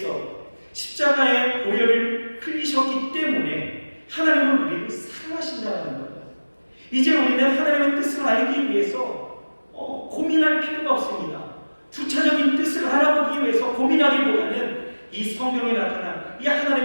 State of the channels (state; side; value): inverted; both; correlation -1.00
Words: 십자가의 보혈을 흘리셨기 때문에 하나님은 우리를 사랑하신다는 거예요. 이제 우리는 하나님의 뜻을 알기 위해서 고민할 필요가 없습니다. 부차적인 뜻을 알아보기 위해서 고민하기보다는 이 성경에 나타난 이